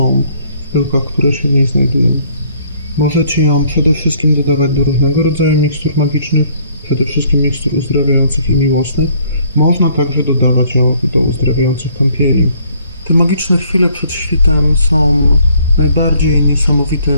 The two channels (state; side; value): inverted; both; correlation -0.62